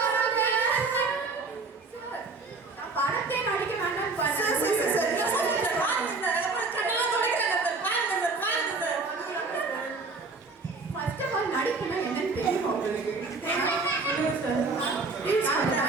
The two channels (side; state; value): left; quieter; 3.9 dB